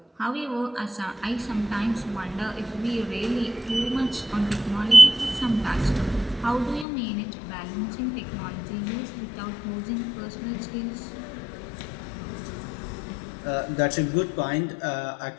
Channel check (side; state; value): right; drops out; at 6.9 s